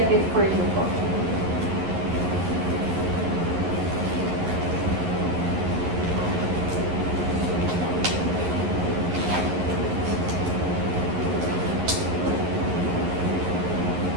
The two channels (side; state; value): left; late; 11 ms